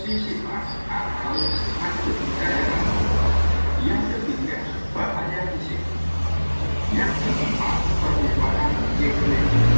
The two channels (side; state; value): both; inverted; correlation -1.00